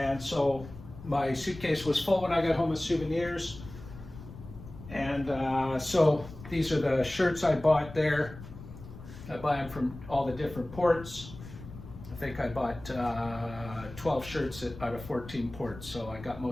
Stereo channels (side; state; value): left; noise; rumble, 15 dB below the sound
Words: so my suitcase was full when I got home with souvenirs. And so these are the shirts I bought there. I buy them from all the different ports. I think I bought 12 shirts out of 14 ports, so I got